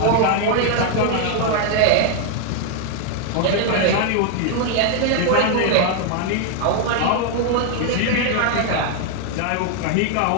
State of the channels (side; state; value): both; different; correlation 0.00